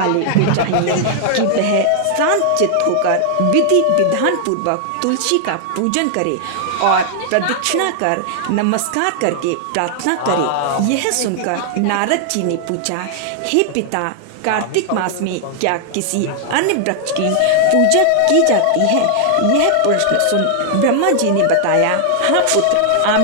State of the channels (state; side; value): different; both; correlation 0.00